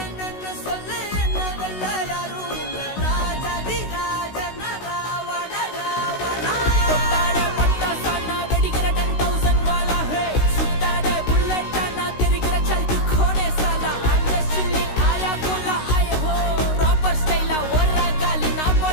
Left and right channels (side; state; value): right; late; 16 ms